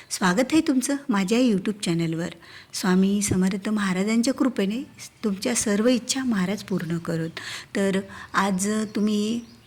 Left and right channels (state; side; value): identical; both; correlation 1.00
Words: स्वागत आहे तुमचं माझ्या यूट्यूब चॅनलवर. स्वामी समर्थ महाराजांच्या कृपेने तुमच्या सर्व इच्छा महाराज पूर्ण करोत. तर आज तुम्ही